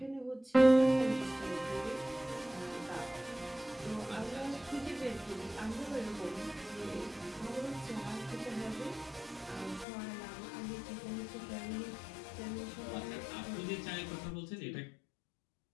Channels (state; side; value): drops out; right; at 9.9 s